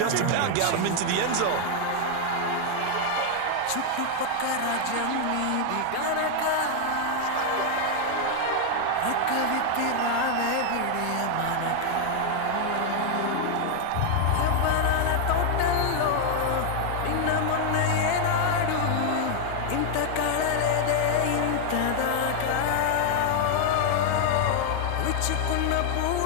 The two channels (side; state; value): both; different; correlation 0.00